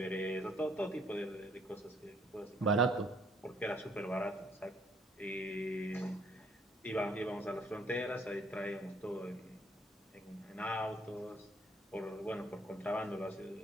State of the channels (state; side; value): normal; both; correlation 0.65